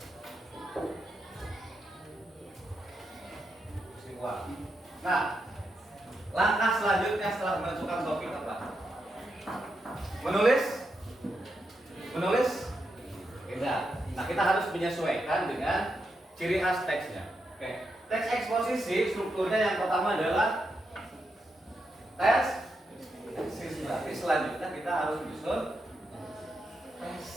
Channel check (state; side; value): normal; both; correlation 0.84